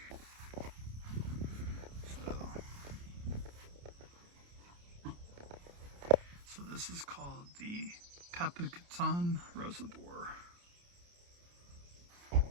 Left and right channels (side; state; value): left; late; 29 ms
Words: So this is called the Pepacatan Reservoir.